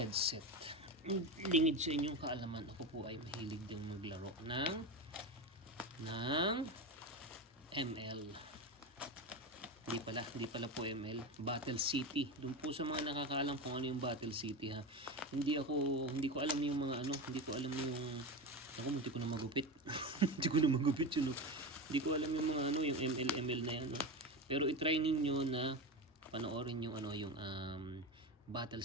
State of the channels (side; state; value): both; normal; correlation 0.20